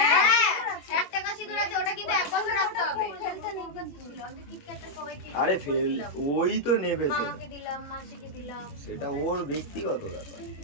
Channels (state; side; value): late; right; 21 ms